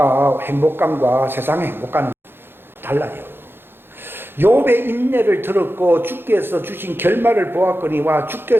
세상의 행복감은 달라요. 욥의 인내를 들었고 주께서 주신 결말을 보았거니와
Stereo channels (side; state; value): left; late; 0.10 ms